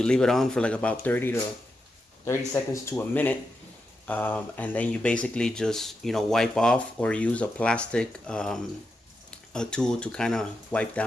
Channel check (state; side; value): normal; both; correlation 0.87